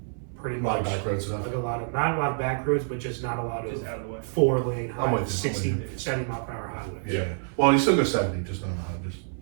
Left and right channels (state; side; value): silent; left; 60 dB below the other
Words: pretty A lot much of back road stuff. like not a lot of back roads, but just not a lot of Just out of the way. 4-lane I'm with you, 60, I'm with you. 70 mile per hour highways. Yeah. Well, you still go 70, just not 100.